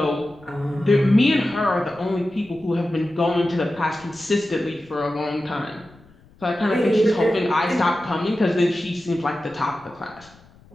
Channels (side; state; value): left; noise; rumble, 27 dB below the sound